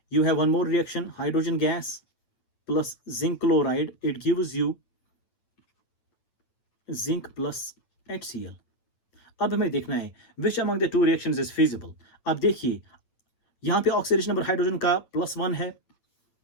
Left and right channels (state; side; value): late; right; 9.1 ms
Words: You have one more reaction, hydrogen gas plus zinc chloride. It gives you zinc plus HCl. अब हमें देखना है which among the two reactions is feasible. अब देखिए यहाँ पे oxidation number hydrogen का +1 है